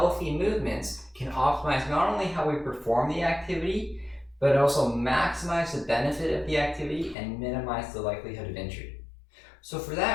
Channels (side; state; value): right; drops out; at 7.2 s